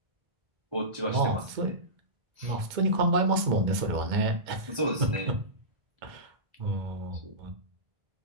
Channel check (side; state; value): left; late; 2.1 ms